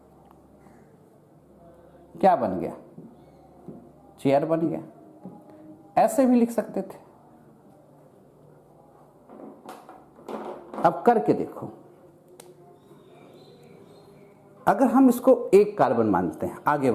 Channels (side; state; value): both; identical; correlation 1.00